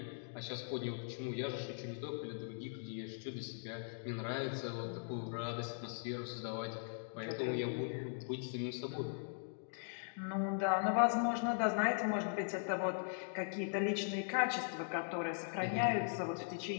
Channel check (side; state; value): right; silent; digital silence